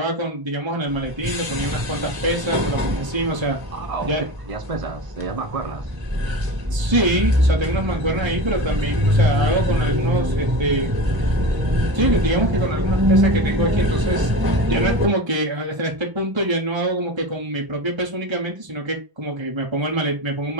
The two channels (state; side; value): late; left; 1.0 ms